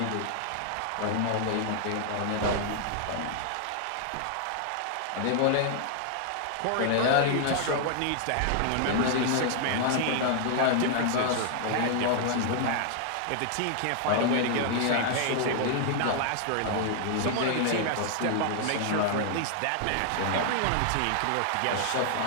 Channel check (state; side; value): different; both; correlation 0.00